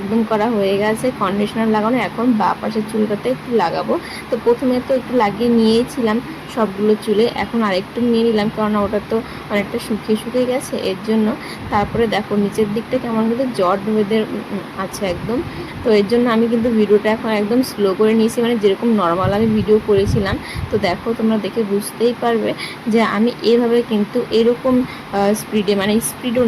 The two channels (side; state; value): both; identical; correlation 1.00